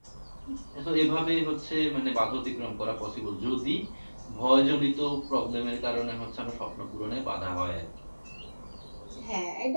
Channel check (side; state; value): both; inverted; correlation -1.00